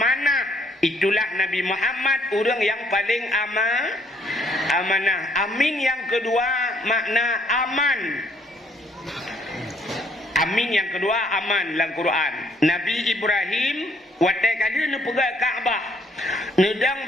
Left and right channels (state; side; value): normal; both; correlation 0.66